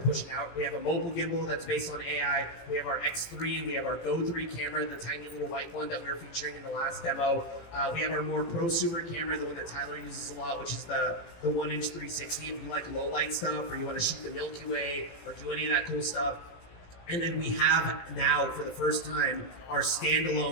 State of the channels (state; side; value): late; right; 18 ms